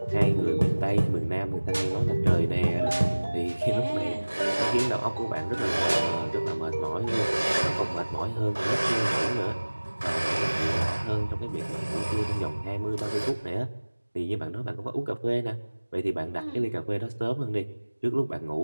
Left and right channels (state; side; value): inverted; both; correlation -1.00